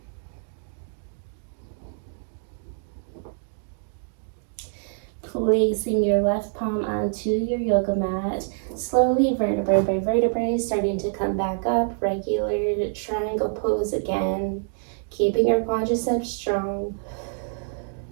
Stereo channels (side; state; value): left; silent; digital silence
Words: Placing your left palm onto your yoga mat, slowly vertebrae by vertebrae starting to come back up, regular triangle pose again, keeping your quadriceps strong